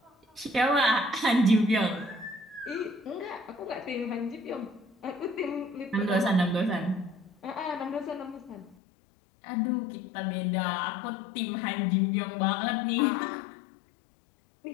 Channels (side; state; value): right; drops out; at 8.8 s